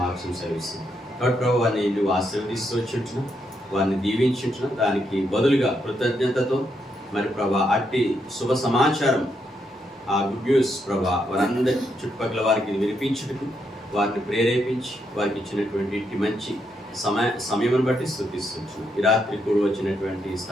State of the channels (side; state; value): both; normal; correlation 0.79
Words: సెలవిస్తుంది. కాబట్టి ప్రభు వారిని నువ్వు ఆశీర్వదిస్తూ వచ్చింటున్నావు, వారిని దీవించుంటున్నావు. దానికి బదులుగా కృతజ్ఞతతో మరి ప్రభా అట్టి శుభ సమాచారం ఆ గుడ్ న్యూస్ ప్రభా వారందరి చుట్టుపక్కల వారికి వినిపించుటకు వారిని ప్రేరేపించి వారికి ఇచ్చినటువంటి ఇట్టి మంచి సమయం బట్టి స్తుతిస్తున్నాం. ఈ రాత్రి కూడా వచ్చినటువంటి